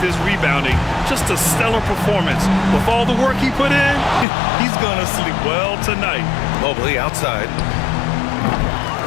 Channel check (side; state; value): right; drops out; at 4.2 s